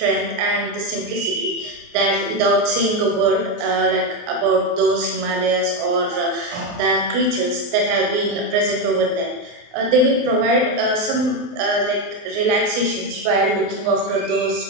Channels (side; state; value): left; late; 23 ms